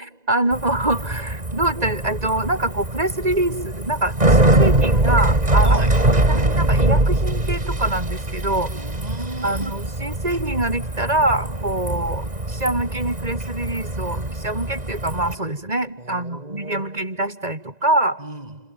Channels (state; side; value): late; left; 2.0 ms